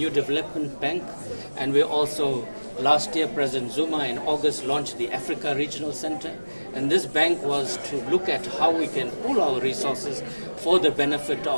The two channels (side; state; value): both; inverted; correlation -1.00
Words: development bank, and we also, last year, President Zuma in August launched the Africa Regional Center. And this bank was to look at how we can pool our resources for the benefit